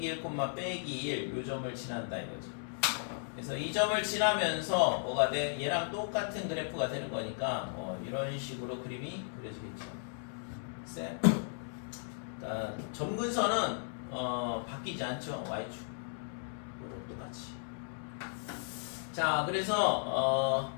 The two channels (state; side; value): silent; right; 54 dB below the other